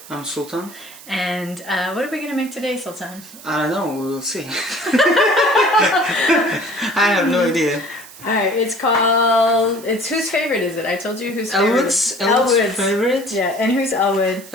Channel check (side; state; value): right; noise; hiss, 18 dB below the sound